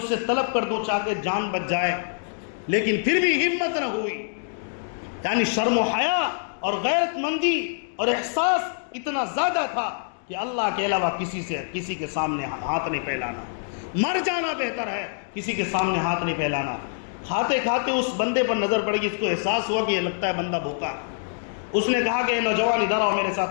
سے طلب کر دوں چاہے جان بچ جائے، لیکن پھر بھی ہمت نہ ہوئی۔ یعنی شرم و حیا اور غیرت مندی اور احساس اتنا زیادہ تھا کہ اللہ کے علاوہ کسی کے سامنے ہاتھ نہیں پھیلانا، مر جانا بہتر ہے کسی کے سامنے ہاتھ نہیں پھیلانا۔ کھاتے کھاتے اس بندے پر نظر پڑ گئی، اس کو احساس ہوا کہ یہ لگتا ہے بندہ بھوکا ہے۔ اس نے کہا کہ اے نوجوان ادھر آؤ، میرے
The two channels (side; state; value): right; silent; digital silence